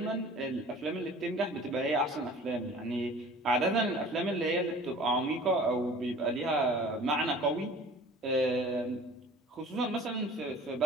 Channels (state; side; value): normal; both; correlation 0.45